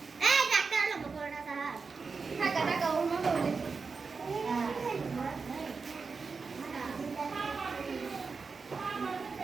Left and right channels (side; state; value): left; quieter; 4.8 dB